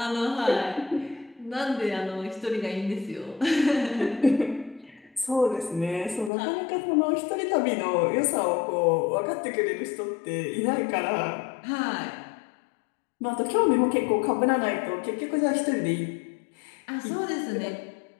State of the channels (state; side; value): drops out; right; at 6.3 s